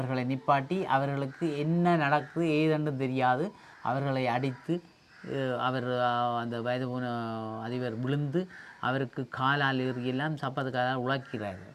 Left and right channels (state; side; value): identical; both; correlation 1.00